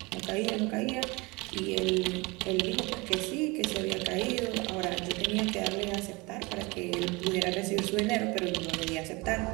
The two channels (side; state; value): left; quieter; 25.3 dB